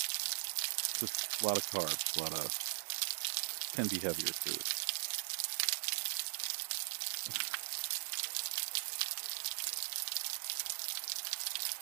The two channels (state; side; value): silent; left; 51 dB below the other